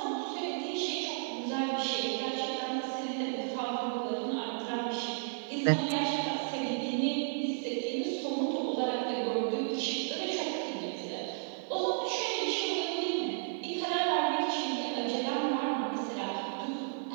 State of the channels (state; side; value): silent; left; digital silence